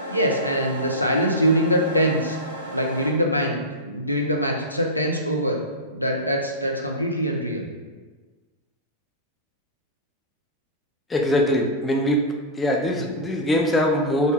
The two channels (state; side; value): normal; both; correlation -0.17